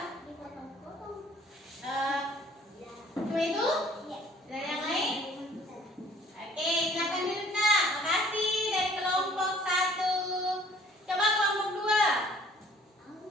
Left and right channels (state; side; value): normal; both; correlation 0.55